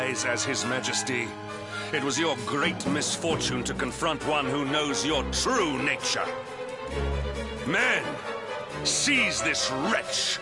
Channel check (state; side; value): identical; both; correlation 1.00